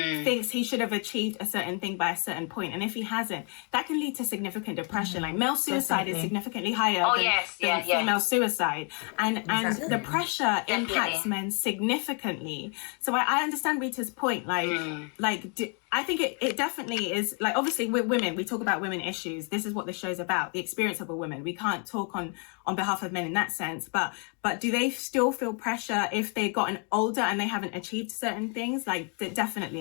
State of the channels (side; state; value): right; quieter; 38.4 dB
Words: thinks he should have achieved a certain thing by a certain point, and if he hasn't, that can lead to significant depression. Like male suicide is significantly higher than female suicide, and the pressure impacts men significantly. So I understand Rita's point. I think it definitely is, like, obviously with women, we talk about women issues. This is what the show's about, the experience of a woman. We can't talk on behalf of men in that sense, but do they still feel pressure if they've gotten older and they haven't achieved certain things? Like,